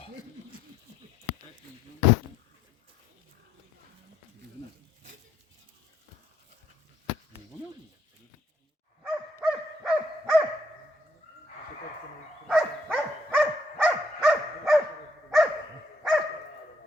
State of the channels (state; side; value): normal; both; correlation 0.71